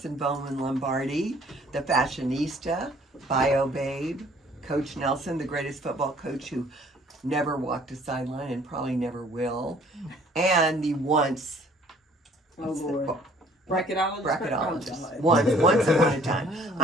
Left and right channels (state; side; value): normal; both; correlation 0.57